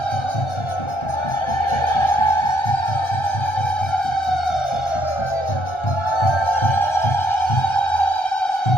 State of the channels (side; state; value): right; late; 1.3 ms